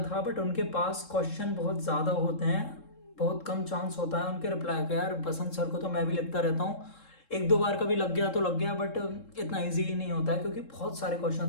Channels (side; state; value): right; late; 3.7 ms